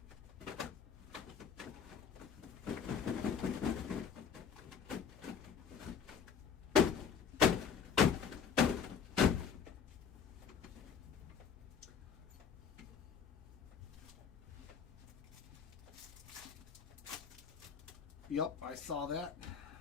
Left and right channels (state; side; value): quieter; right; 6.9 dB